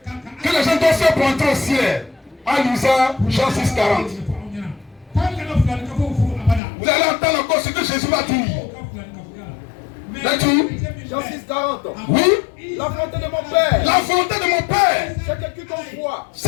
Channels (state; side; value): drops out; right; at 6.6 s